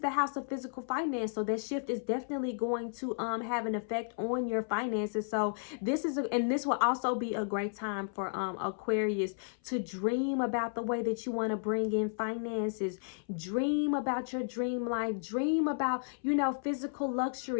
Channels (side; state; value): right; silent; 56 dB below the other